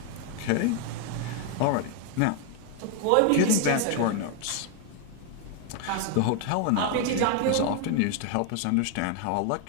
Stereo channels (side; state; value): both; different; correlation 0.01